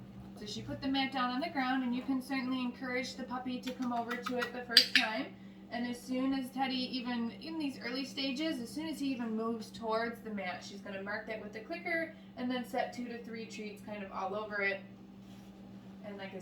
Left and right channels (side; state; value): both; identical; correlation 1.00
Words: So she put the mat down on the ground, and you can certainly encourage the puppy to come over to it the first time. And as soon as Teddy, even in these early stages, as soon as he even moves towards the mat, she's going to mark that with the clicker and then set 2 to 3 treats kind of all over it. And like I